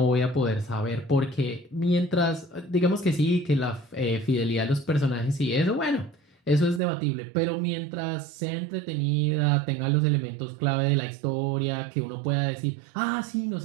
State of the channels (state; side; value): drops out; left; at 6.8 s